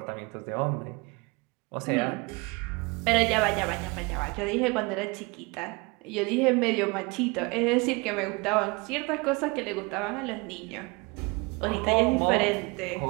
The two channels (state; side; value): quieter; left; 27.5 dB